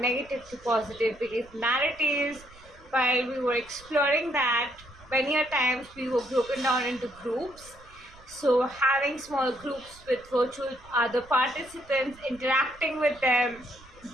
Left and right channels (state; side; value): noise; right; rumble, 24 dB below the sound